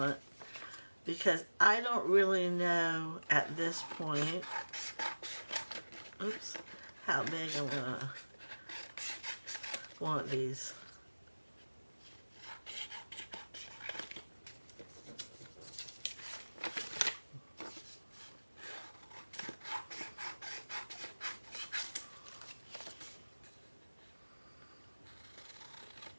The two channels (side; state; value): both; inverted; correlation -1.00